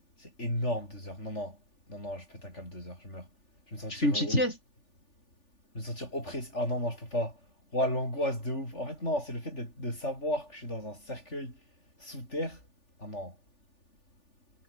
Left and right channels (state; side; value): late; right; 3.4 ms